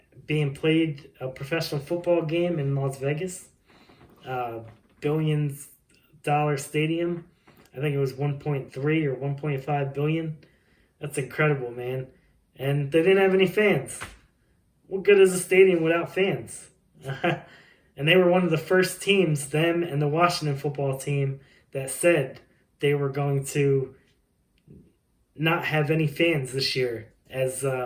being played, a professional football game in Las Vegas. $billions stadium. I think it was 1.3 or 1.5 billion. That's incredible, man. And they didn't have any fans. What good is a stadium without fans? And they were one of the first teams, them and the Washington football team, that said they were going to not have any fans this year as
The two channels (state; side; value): identical; both; correlation 1.00